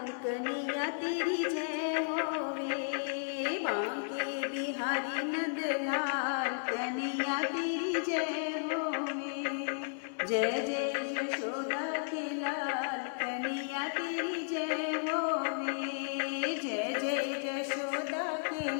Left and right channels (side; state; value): right; silent; 55 dB below the other